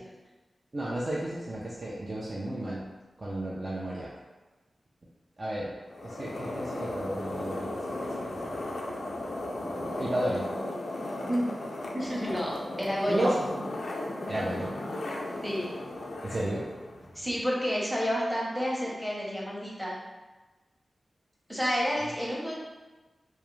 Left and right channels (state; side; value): normal; both; correlation 0.94